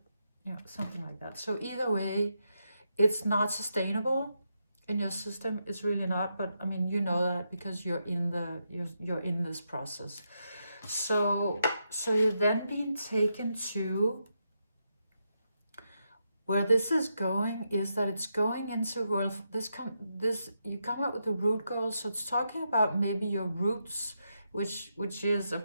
something like that. So either way, it's not sustainable in your system. It's really not. But I mean, you know that because you're in this process. So you're then being taken to where this is going, is that it's going into, well, you come up with the root goal. So it's talking about maybe your roots, which is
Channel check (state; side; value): inverted; both; correlation -0.83